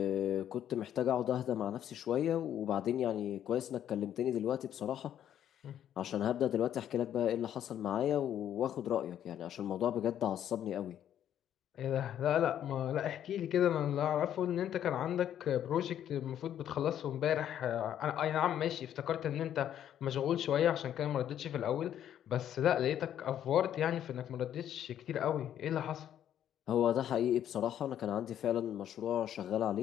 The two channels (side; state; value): right; quieter; 10.5 dB